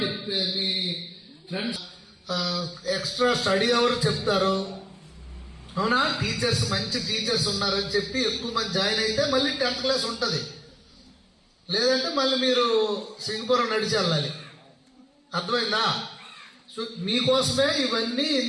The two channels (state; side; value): identical; both; correlation 1.00